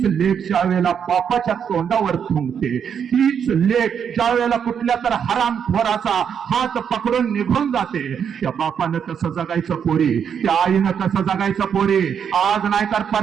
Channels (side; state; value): left; quieter; 7.6 dB